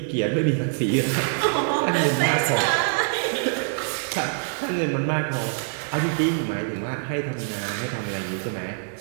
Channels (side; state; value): left; silent; 58 dB below the other